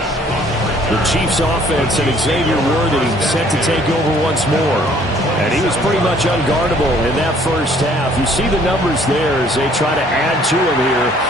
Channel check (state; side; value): normal; both; correlation 0.59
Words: The Chiefs offense and Xavier Worthy set to take over once more. And he was pretty much unguardable in that first half. You see the numbers there as they try to add to him here